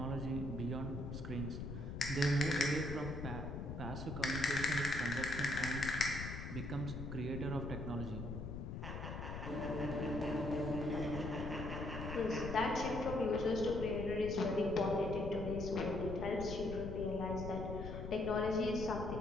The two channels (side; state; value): left; noise; rumble, 6 dB below the sound